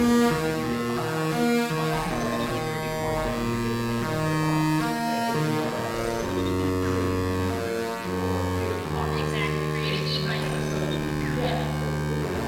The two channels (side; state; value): both; identical; correlation 1.00